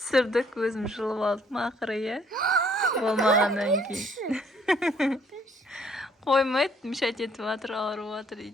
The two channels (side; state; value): both; normal; correlation 0.63